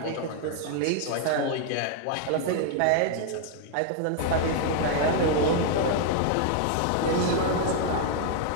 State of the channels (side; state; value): both; different; correlation 0.00